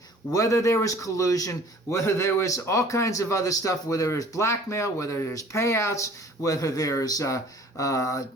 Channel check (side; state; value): both; normal; correlation 0.50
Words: whether there was collusion, whether there was all kinds of other stuff, whether there's blackmail, whether there's payouts, whether there's